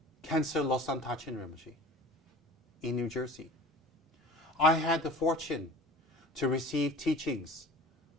Khyentse Losang Tachin Rinpoche in New Jersey. I had the fortune to receive teachings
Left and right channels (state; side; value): normal; both; correlation 0.41